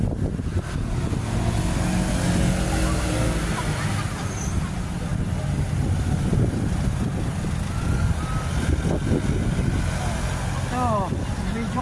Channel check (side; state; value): both; identical; correlation 1.00